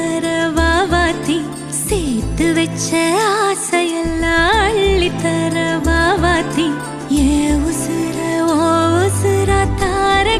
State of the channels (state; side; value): identical; both; correlation 1.00